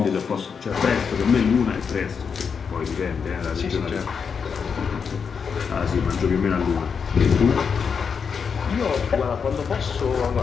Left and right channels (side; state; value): right; quieter; 6.2 dB